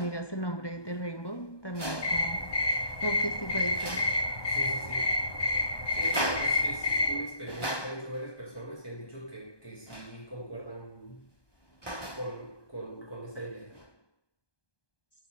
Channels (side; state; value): right; late; 1.2 ms